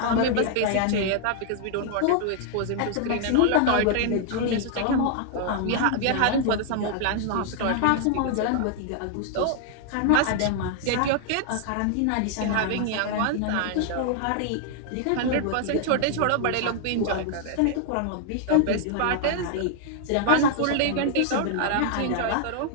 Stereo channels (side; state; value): both; different; correlation 0.00